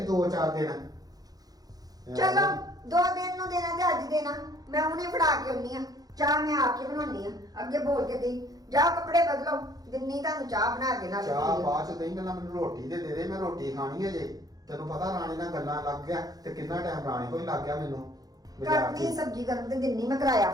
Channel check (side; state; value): left; late; 0.18 ms